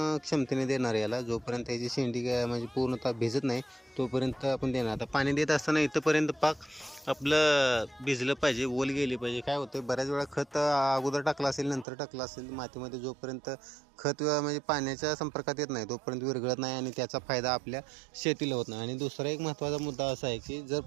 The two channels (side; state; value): left; drops out; at 11.9 s